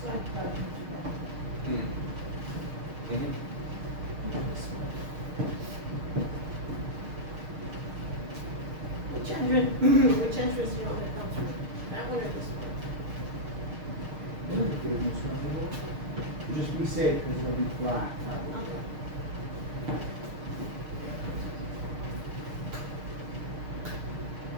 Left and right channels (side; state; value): left; late; 6.6 ms